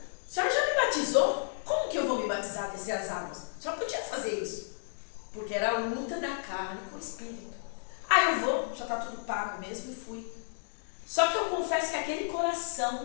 senhora já me batizou? Como que eu vou me batizar, descer as águas? A senhora podia fazer isso, porque era a luta da carne com o espírito. Ah, eu vou, já está tudo pago mesmo, e fui. Só que eu confesso que aquele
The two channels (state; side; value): silent; right; digital silence